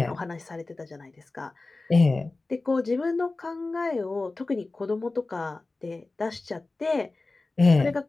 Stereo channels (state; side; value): quieter; right; 3.3 dB